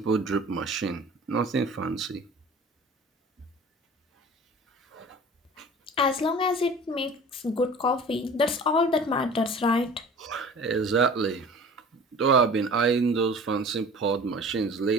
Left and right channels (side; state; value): both; normal; correlation 0.43